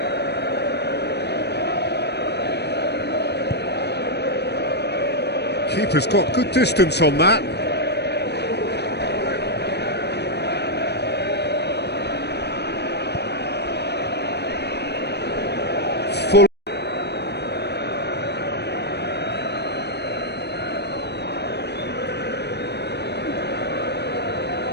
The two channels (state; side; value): late; right; 0.49 ms